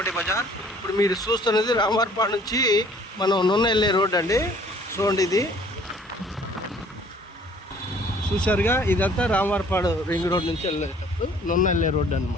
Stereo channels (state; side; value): normal; both; correlation 0.55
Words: bazaar. ఇప్పుడు మీరు చూస్తున్నది రామవారపాడు నుంచి మనం నున్న వెళ్ళే రోడ్ అండి. చూడండి, ఇది చూసారుగా, ఇదంతా రామవారపాడు రింగ్ రోడ్ నుంచి వెళ్ళేటప్పుడు నున్న వెళ్ళే రోడ్డు